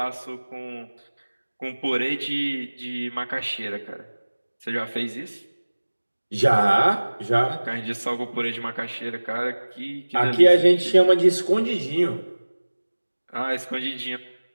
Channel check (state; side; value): inverted; both; correlation -1.00